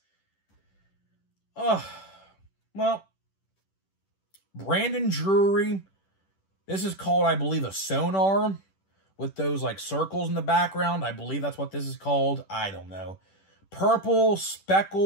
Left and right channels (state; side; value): late; right; 10 ms